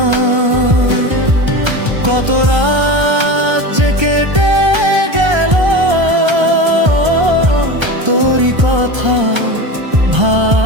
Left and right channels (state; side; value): late; left; 1.3 ms